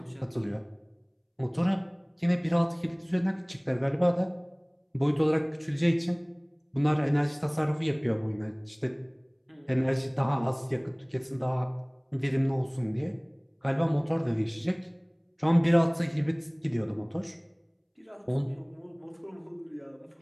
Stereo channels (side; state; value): both; identical; correlation 1.00